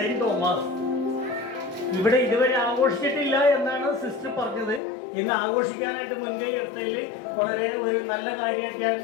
തോമസ്. ഇവിടെ ഇതുവരെ ആഘോഷിച്ചിട്ടില്ല എന്നാണ് സിസ്റ്റർ പറഞ്ഞത്. ഇന്ന് ആഘോഷിക്കാനായിട്ട് മുൻകൈ എടുത്തതിൽ വളരെ ഒരു നല്ല കാര്യമായിട്ട്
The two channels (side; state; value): right; drops out; at 4.8 s